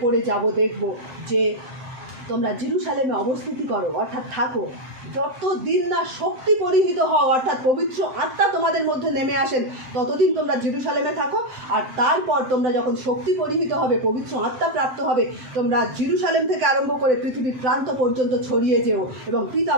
পড়ে যাব দেখব, যে তোমরা জেরুজালেমে অবস্থিতি করো, অর্থাৎ থাকো, যতদিন না শক্তি পরিহিত হও, অর্থাৎ পবিত্র আত্মা তোমাদের মধ্যে নেমে আসেন, ততদিন তোমরা জেরুজালেমে থাকো। আর তারপর তোমরা যখন শক্তি পরিহিত হবে, পবিত্র আত্মা প্রাপ্ত হবে, তোমরা জেরুজালেম থেকে আরম্ভ করে পৃথিবীর প্রান্ত পর্যন্ত ছড়িয়ে যেও এবং পিতা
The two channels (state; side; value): late; left; 7.7 ms